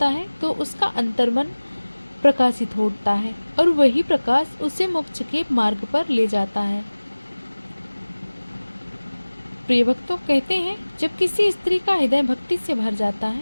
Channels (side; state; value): both; inverted; correlation -1.00